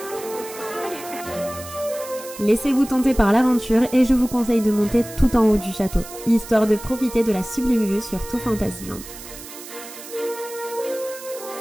Laissez-vous tenter par l'aventure et je vous conseille de monter tout en haut du château, histoire de profiter de la sublime vue sur tout Fantasyland.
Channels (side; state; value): right; noise; hiss, 14 dB below the sound